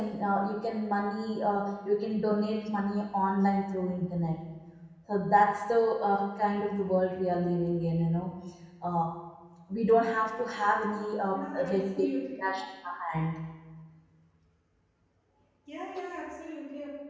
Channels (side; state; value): both; identical; correlation 1.00